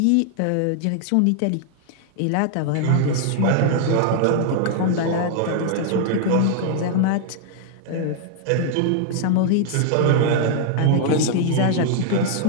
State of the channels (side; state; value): both; different; correlation -0.01